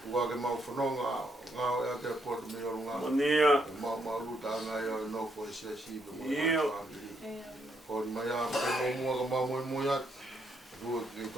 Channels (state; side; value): normal; both; correlation 0.75